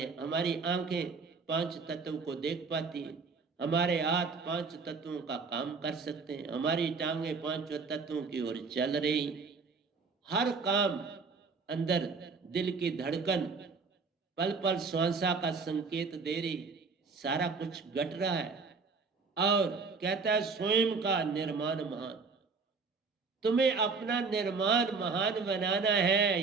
हमारी आंखें पांच तत्व को देख पाती हैं, हमारे हाथ पांच तत्वों का काम कर सकते हैं, हमारी टांगे पांचों तत्वों की ओर चल रही, हर काम अंदर दिल की धड़कन पल पल श्वासा का संकेत दे रही, सारा कुछ घट रहा है। और कहता है स्वयं का निर्माण महान। तुम्हें अपना निर्माण महान बनाना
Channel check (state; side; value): quieter; left; 4.7 dB